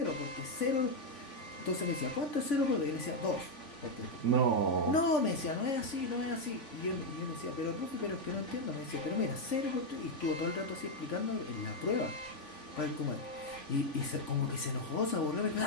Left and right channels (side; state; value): right; late; 3.5 ms